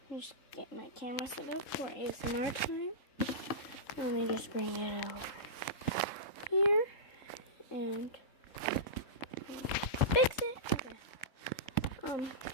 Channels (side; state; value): right; late; 3.7 ms